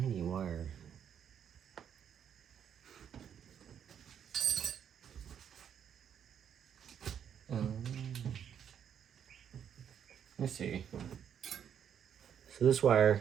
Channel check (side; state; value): left; quieter; 8.7 dB